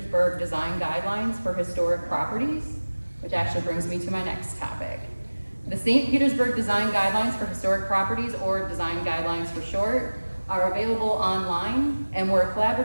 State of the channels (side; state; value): both; inverted; correlation -1.00